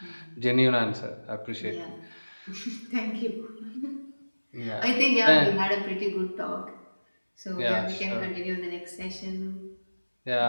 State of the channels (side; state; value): both; inverted; correlation -1.00